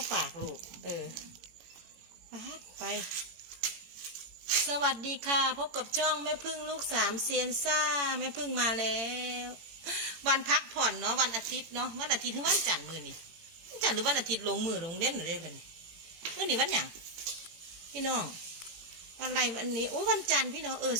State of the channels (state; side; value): late; left; 18 ms